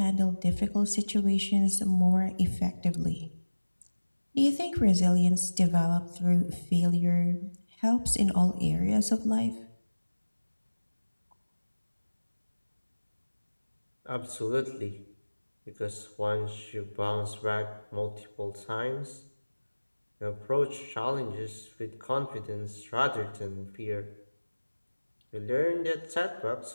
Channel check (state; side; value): inverted; both; correlation -1.00